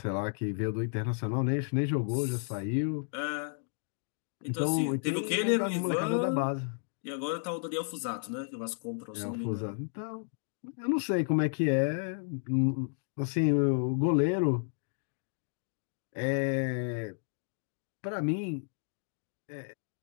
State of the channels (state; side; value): silent; right; digital silence